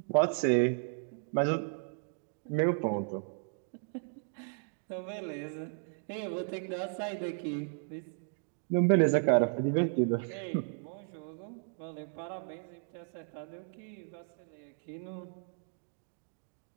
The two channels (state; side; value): silent; left; digital silence